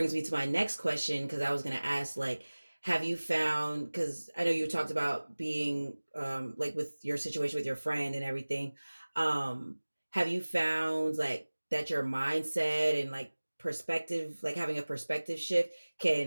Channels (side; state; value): both; inverted; correlation -1.00